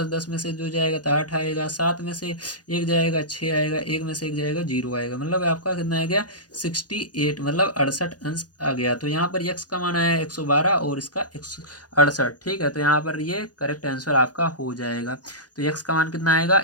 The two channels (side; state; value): right; late; 0.69 ms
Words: में से जो जाएगा तो 8 आएगा, 7 में से 1 जाएगा 6 आएगा, 1 में से 1 जाएगा 0 आएगा। मतलब आपका कितना आ गया, 68, मतलब 68 अंश आ गया। तो यहाँ पर यक्स का मान आया 112 और इसका 168, ठीक है। तो यहाँ पर ये करेक्ट आंसर आपका हो जाएगा। तो यक्स का मान कितना आएगा,